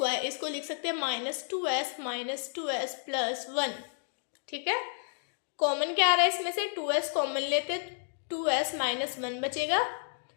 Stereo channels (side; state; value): right; silent; digital silence